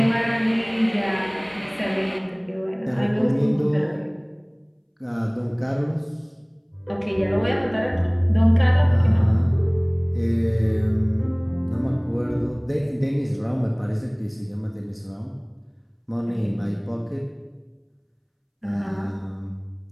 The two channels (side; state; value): both; identical; correlation 1.00